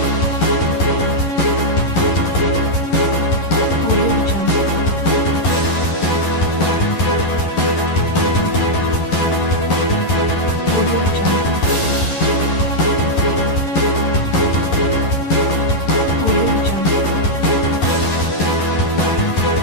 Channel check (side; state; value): right; late; 11 ms